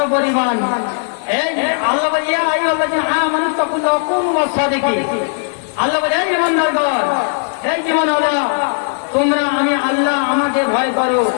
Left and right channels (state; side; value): silent; right; 69 dB below the other